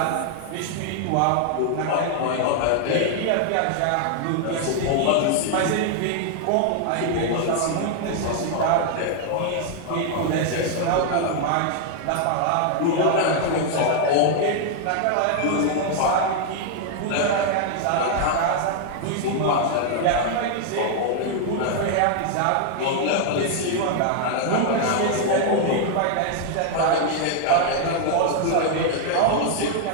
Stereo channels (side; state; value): both; different; correlation 0.00